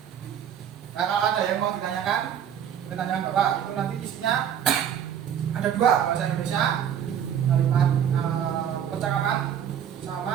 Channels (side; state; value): left; quieter; 9.2 dB